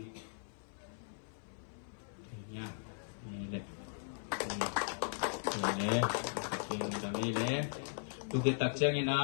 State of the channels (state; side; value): silent; right; 52 dB below the other